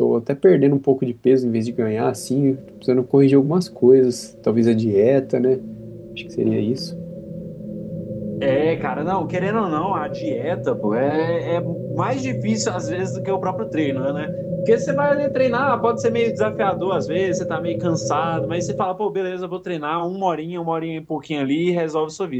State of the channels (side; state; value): both; identical; correlation 1.00